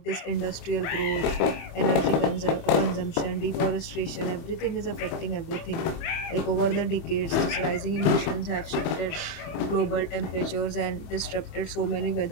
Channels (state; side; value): late; right; 25 ms